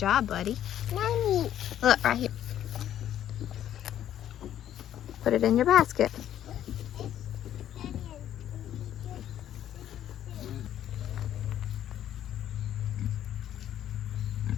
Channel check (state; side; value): quieter; right; 11.2 dB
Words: buddy. Mommy. Look, right here. Put it in your basket.